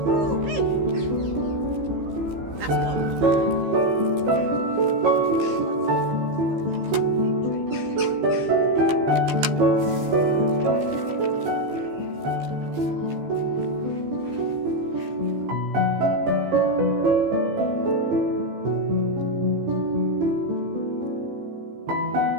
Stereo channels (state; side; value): late; left; 15 ms